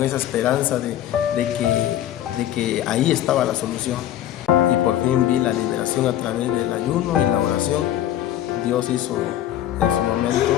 esa esperanza de que ahí estaba la solución. Y por fin vi la liberación a través del ayuno y la oración. Dios hizo en su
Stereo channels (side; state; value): right; quieter; 12.1 dB